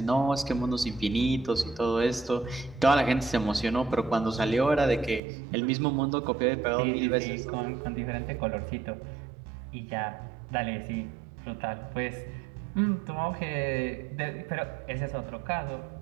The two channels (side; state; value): left; drops out; at 5.2 s